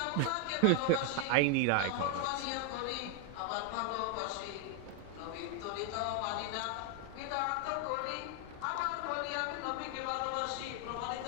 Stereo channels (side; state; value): both; different; correlation 0.01